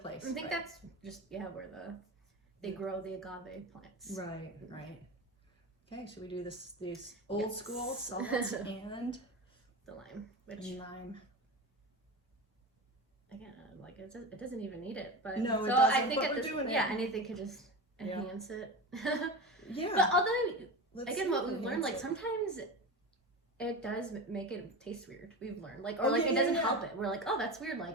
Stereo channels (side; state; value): both; normal; correlation 0.26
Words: I think that's just where they grow the agave plants. Right. Okay, should we do these old school salt and the lime, lime? Again, like it doesn't even need it, but no, it so doesn't. I think but we're doing it. anything could just enhance it. Yeah. But although what we've learned, like sometimes it does make it taste weird. We've learned, it doesn't help it. We're like, oh, that's weird.